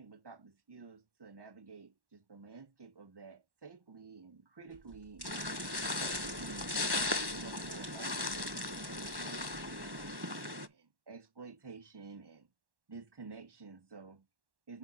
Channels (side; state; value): left; late; 1.1 ms